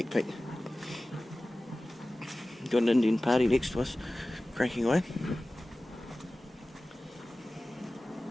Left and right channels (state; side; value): normal; both; correlation 0.97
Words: peek. Got an Indian party next to us, cranking away.